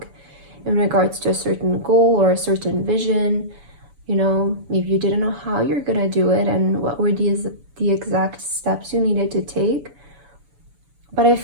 in regards to a certain goal or a certain vision. You know, maybe you didn't know how you're going to do it and what were the exact steps you needed to take. But I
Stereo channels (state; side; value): late; left; 7.0 ms